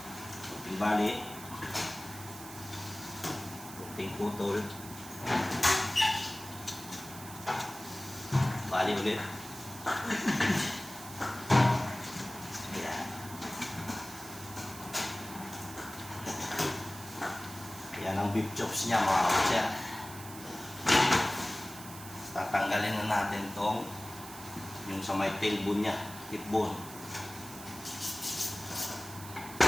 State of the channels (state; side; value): noise; right; hiss, 14 dB below the sound